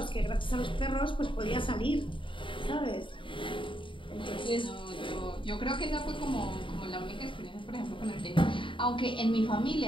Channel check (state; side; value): late; right; 0.25 ms